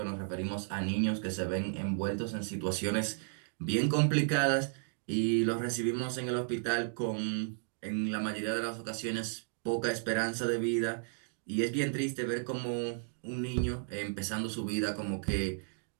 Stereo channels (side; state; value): left; silent; digital silence